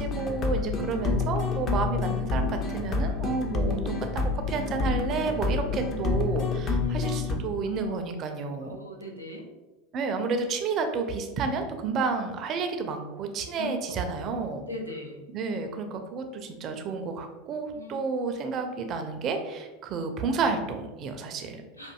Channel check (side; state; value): both; normal; correlation 0.35